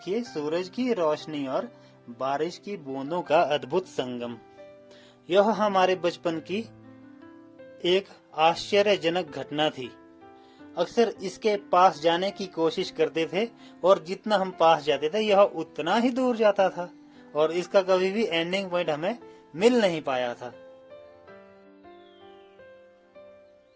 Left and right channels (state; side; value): identical; both; correlation 1.00